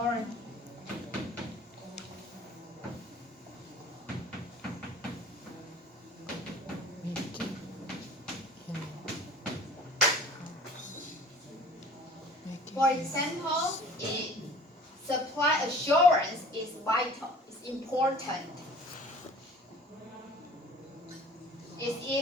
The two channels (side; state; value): both; normal; correlation 0.47